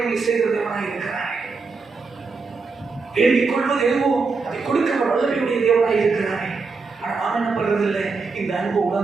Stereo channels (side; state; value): left; quieter; 4.4 dB